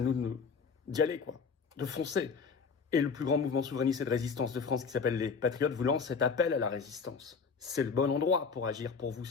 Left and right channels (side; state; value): right; quieter; 5.5 dB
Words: nous d'y aller, quoi. De foncer. Et le plus grand mouvement souverainiste et de résistance de France, qui s'appelle les Patriotes, vous lance cet appel à la résistance. C'est le bon endroit pour agir pour vous,